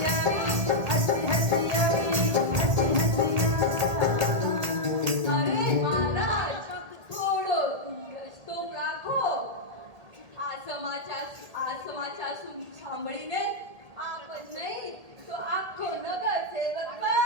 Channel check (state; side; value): late; left; 1.8 ms